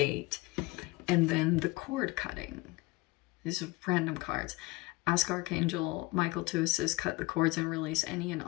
And then the cord cutting. These are random cards. Ask Archangel Michael to assist, cut the cords, and release any and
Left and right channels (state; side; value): quieter; right; 21.8 dB